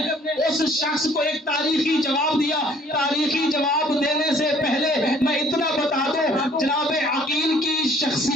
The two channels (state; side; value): normal; both; correlation 0.58